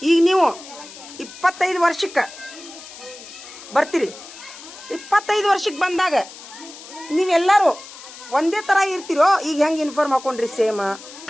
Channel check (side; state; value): left; noise; hiss, 16 dB below the sound